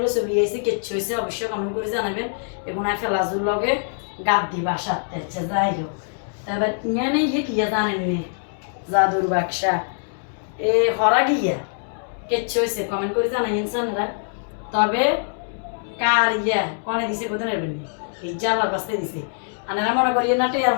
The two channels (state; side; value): silent; right; digital silence